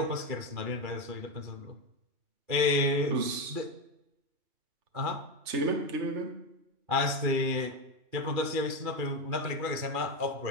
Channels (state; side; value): late; left; 2.4 ms